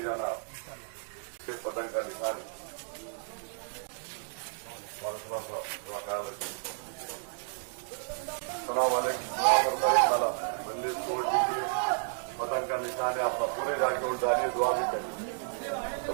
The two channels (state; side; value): silent; left; digital silence